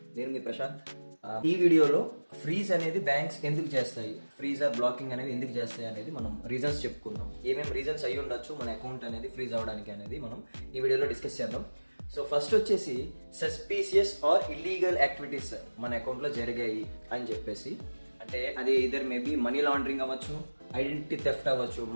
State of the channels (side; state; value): both; inverted; correlation -1.00